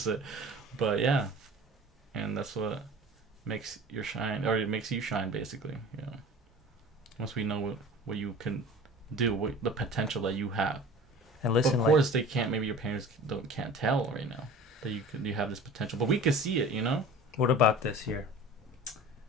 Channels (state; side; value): normal; both; correlation 0.41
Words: But yeah, and that's what makes you shine, basically. You know, once we know what you can do, the potential that you have. And listen, but of course, they can't. Maybe your parents can't tell right now that you have this potential, but we can see it. You know. What about this here?